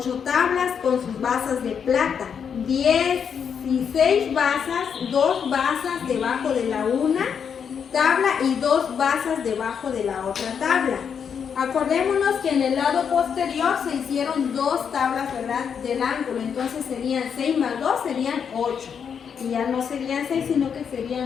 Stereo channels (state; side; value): quieter; right; 7.2 dB